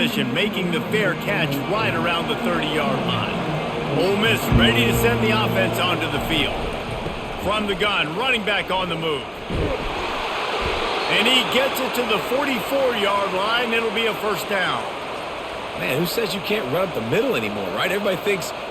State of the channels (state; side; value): identical; both; correlation 1.00